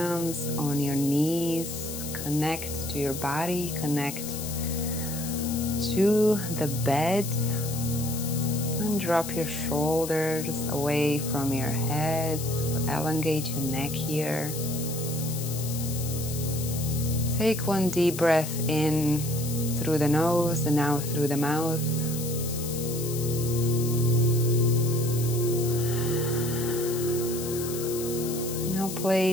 on your knees. Connect to your body, connect to the bed. And drop your shoulders away from your head. Elongate your neck here. Take one deep breath in through the nose and out through the mouth. Now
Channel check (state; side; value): noise; left; hiss, 8 dB below the sound